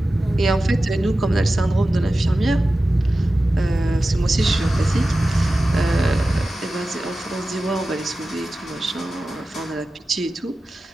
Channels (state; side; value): normal; both; correlation 0.94